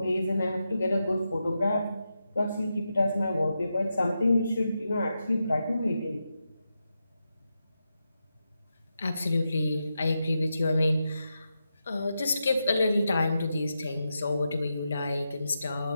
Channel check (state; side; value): inverted; both; correlation -0.87